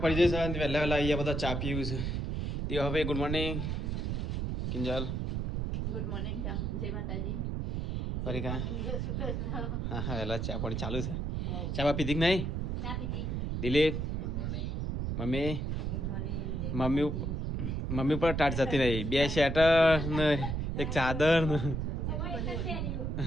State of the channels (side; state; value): right; noise; rumble, 1 dB below the sound